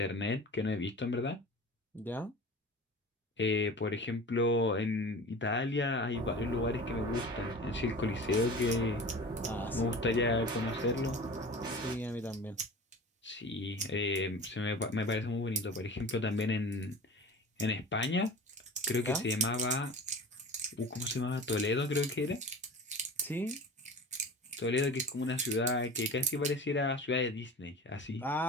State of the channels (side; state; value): both; normal; correlation 0.36